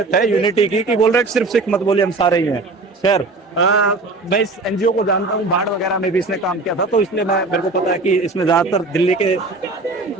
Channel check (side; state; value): left; quieter; 3.4 dB